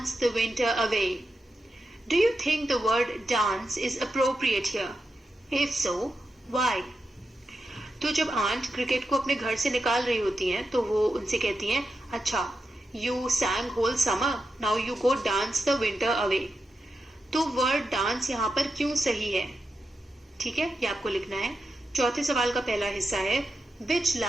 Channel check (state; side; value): normal; both; correlation 0.88